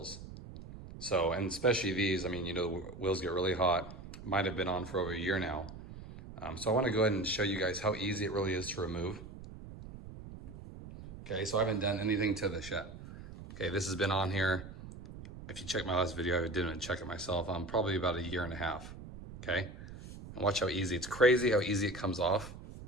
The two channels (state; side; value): noise; right; rumble, 13 dB below the sound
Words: So, and especially these, the wheels get really hot. Might have been on for over a year now. So I wanna go ahead and show you guys how easy it really is to remove. Okay, so I haven't done anything to this yet. Okay, this has been on here. If you check my last video, I didn't check it myself. I'm probably about a year and a half. Okay, and watch how easy. It's crazy how easy it comes off